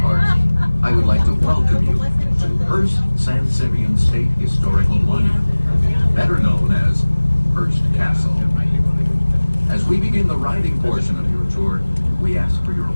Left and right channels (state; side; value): inverted; both; correlation -1.00